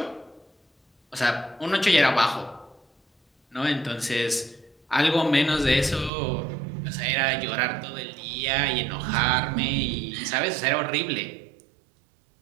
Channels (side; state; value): left; drops out; at 6.1 s